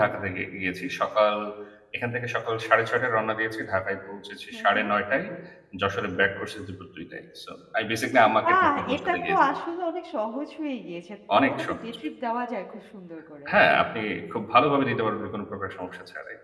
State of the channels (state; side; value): identical; both; correlation 1.00